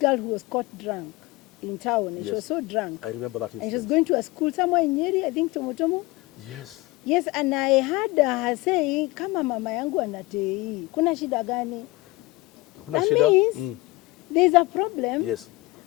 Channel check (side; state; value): right; quieter; 21.6 dB